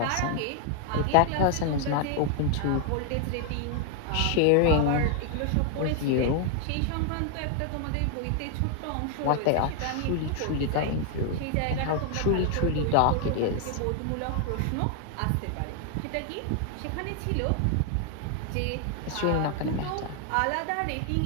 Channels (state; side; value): different; both; correlation 0.00